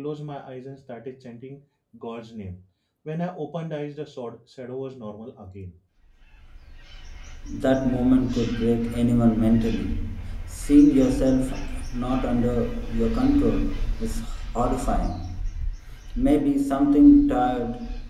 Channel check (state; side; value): identical; both; correlation 1.00